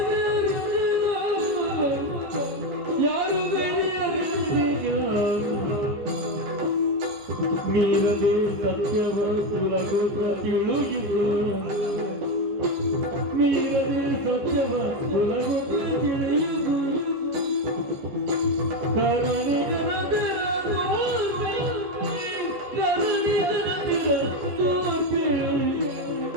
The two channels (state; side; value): late; left; 14 ms